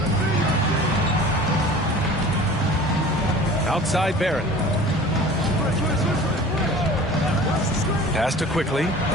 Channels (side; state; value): both; normal; correlation 0.43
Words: Outside Barrett. Pass to Quickly.